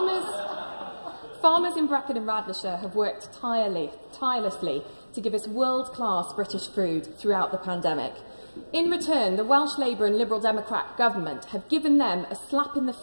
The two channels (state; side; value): inverted; both; correlation -1.00